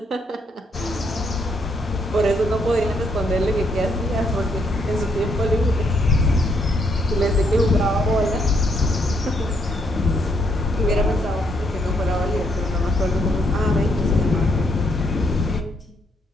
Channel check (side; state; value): both; normal; correlation 0.73